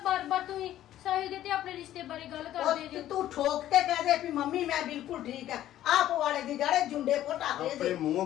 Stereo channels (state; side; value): quieter; right; 12.8 dB